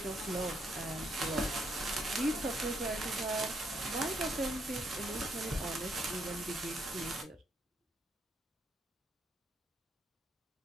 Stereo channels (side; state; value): both; normal; correlation 0.73